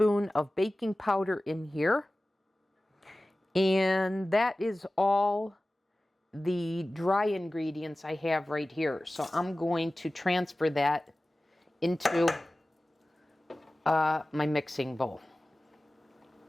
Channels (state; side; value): normal; both; correlation 0.97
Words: of baking powder in here. And that is all the dry ingredients I have right here. So I'm going to transfer that into my mixing bowl.